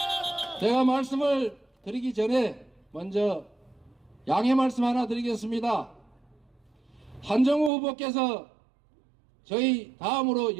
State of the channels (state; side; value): drops out; left; at 7.7 s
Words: 제가 말씀을 드리기 전에 먼저 양해 말씀 하나 드리겠습니다. 한정우 후보께서 저희 다음으로